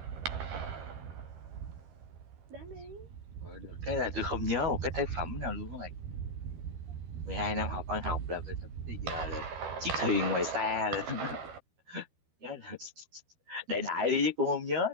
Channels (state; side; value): late; left; 12 ms